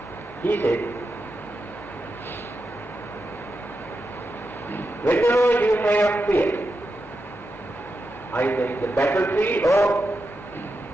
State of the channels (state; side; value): normal; both; correlation 0.88